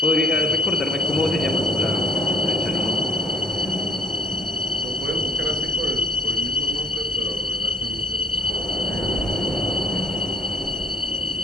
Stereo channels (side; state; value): both; normal; correlation 0.59